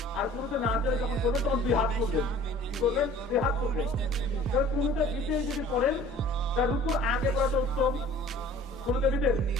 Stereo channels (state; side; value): normal; both; correlation 0.48